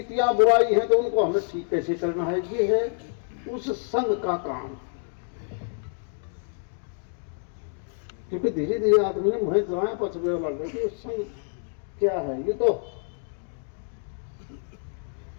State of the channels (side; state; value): right; silent; 60 dB below the other